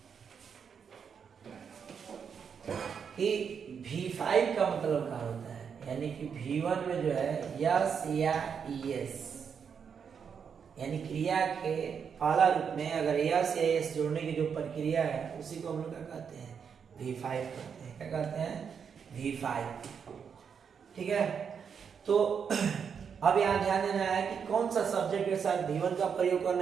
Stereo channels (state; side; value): quieter; left; 6.8 dB